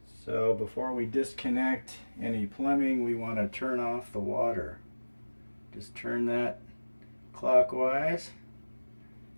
So before we disconnect any plumbing, we want to turn off the water. Just turn that clockwise.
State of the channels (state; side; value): inverted; both; correlation -1.00